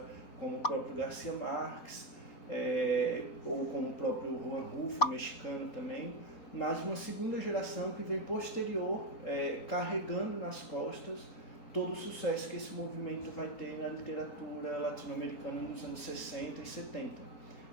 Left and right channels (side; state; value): right; late; 4.2 ms